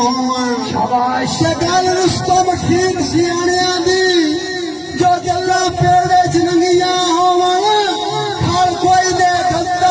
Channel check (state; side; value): identical; both; correlation 1.00